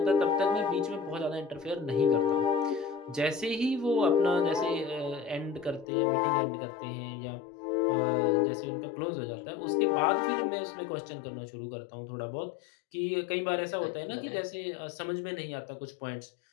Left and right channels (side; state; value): right; drops out; at 5.9 s